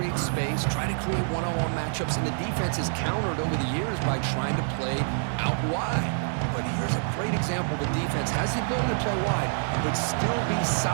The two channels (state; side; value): silent; left; 60 dB below the other